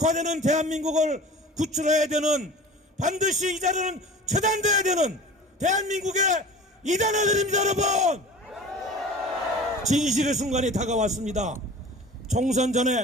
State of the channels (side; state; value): both; normal; correlation 0.39